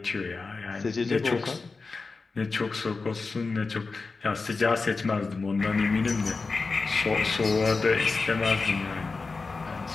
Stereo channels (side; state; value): right; quieter; 4.1 dB